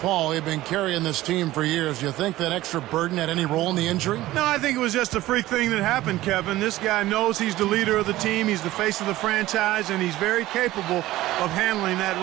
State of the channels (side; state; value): left; quieter; 16.3 dB